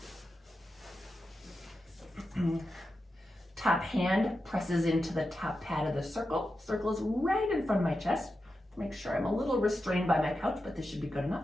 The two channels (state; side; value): normal; both; correlation 0.90